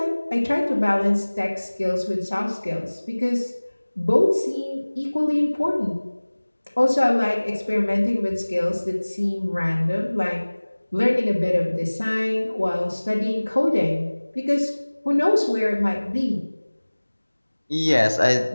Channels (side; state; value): both; inverted; correlation -1.00